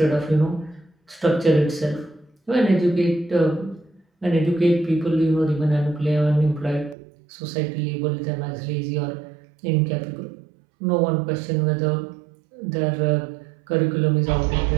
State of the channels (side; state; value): left; drops out; at 7.0 s